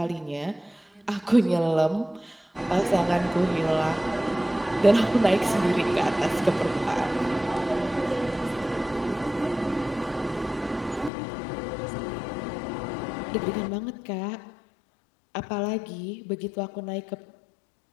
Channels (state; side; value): drops out; right; at 11.1 s